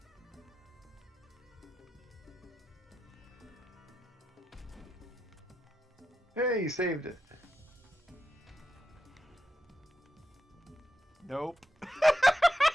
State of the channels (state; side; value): normal; both; correlation 0.87